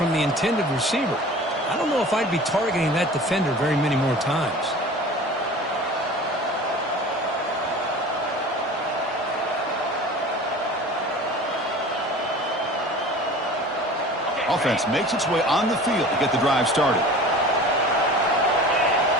the intended receiver. I don't know if I'd be targeting that defender very many more times. Offense makes its way on the field to get the drive started.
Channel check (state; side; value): normal; both; correlation 0.40